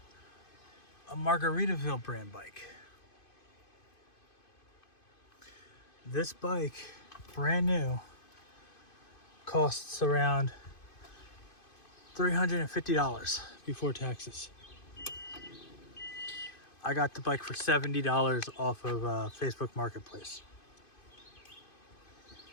a Margaritaville brand bike. This bike, brand new, costs around $350 before taxes. I got the bike for $70 off of Facebook Marketplace.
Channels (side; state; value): right; late; 2.5 ms